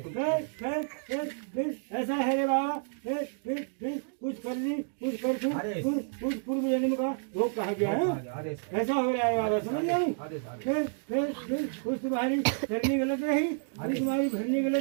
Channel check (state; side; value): silent; left; digital silence